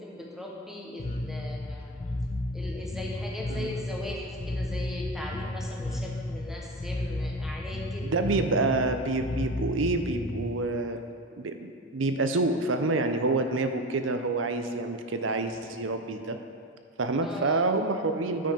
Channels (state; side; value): normal; both; correlation 0.24